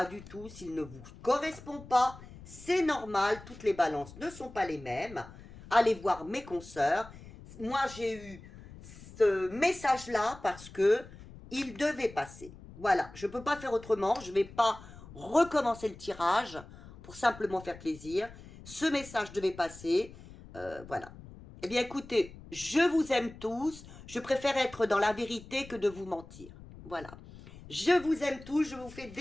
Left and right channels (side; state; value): left; noise; rumble, 18 dB below the sound